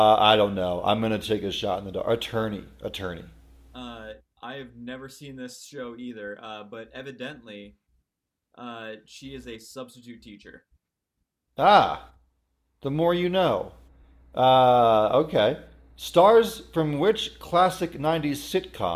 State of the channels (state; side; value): identical; both; correlation 1.00